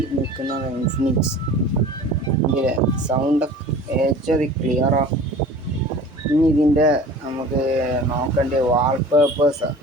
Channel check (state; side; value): normal; both; correlation 0.42